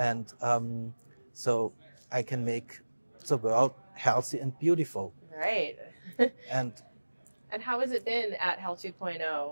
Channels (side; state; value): both; inverted; correlation -1.00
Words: so I can make the world healthy and beautiful. Right. And how has it been at Health 2.0